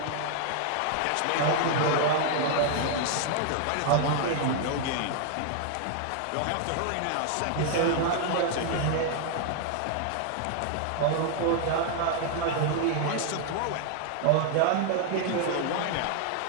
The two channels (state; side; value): different; both; correlation 0.00